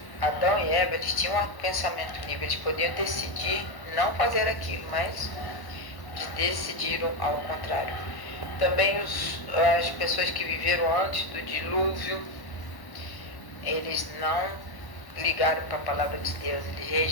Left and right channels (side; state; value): right; late; 1.1 ms